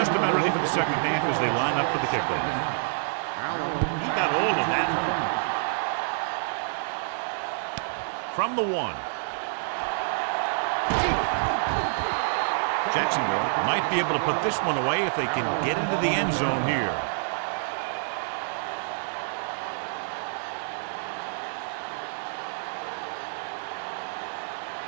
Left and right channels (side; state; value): left; silent; digital silence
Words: about ready for the second half as they line up for the kickoff. He got all of that. From the 1. Jacksonville might be able to put this one away if they can get into the end zone here.